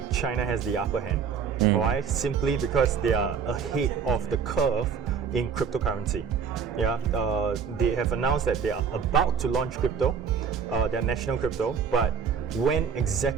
China has the upper hand. Why? Simply because they are ahead of the curve in cryptocurrency. They have announced that they are about to launch crypto, their national crypto, but when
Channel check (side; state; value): left; quieter; 6.6 dB